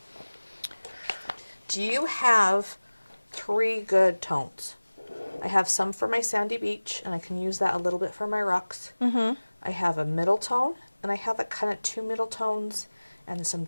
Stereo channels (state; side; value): inverted; both; correlation -1.00